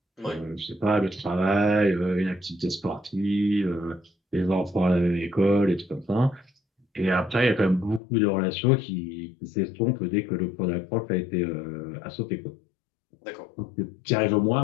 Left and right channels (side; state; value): right; drops out; at 8.0 s